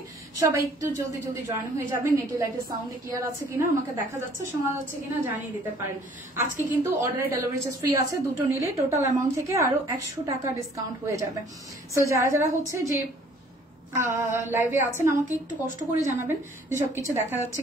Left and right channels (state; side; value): normal; both; correlation 0.57